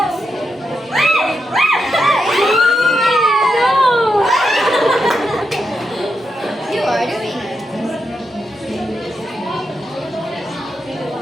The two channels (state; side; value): normal; both; correlation 0.85